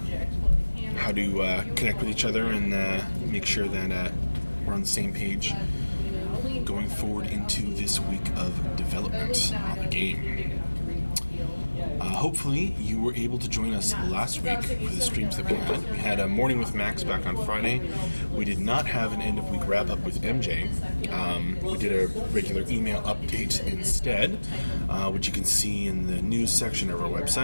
how to connect with each other and make sure that we're on the same page going forward into this week of development on the game. Hopefully you were able to join us last week for the streams that we had. We had a Morning with Max back on Friday. We did not have an end of week wrap up with MJ. We did a regular email update instead, which you can see in the news section of our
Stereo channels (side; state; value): both; inverted; correlation -1.00